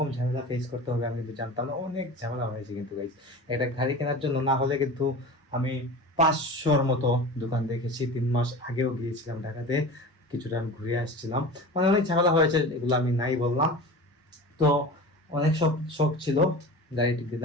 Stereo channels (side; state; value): both; normal; correlation 0.34